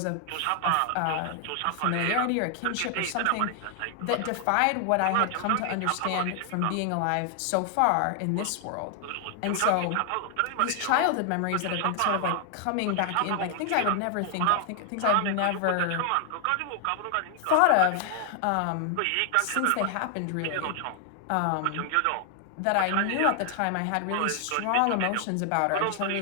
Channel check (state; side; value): different; both; correlation 0.00